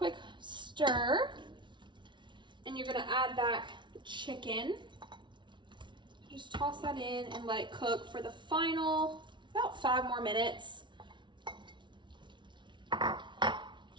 stir, and you're gonna add back the chicken. Just toss that in and let it cook for the final about 5 more minutes.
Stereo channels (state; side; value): late; left; 0.23 ms